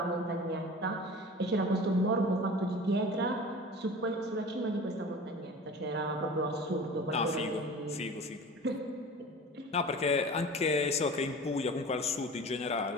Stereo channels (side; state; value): both; normal; correlation 0.38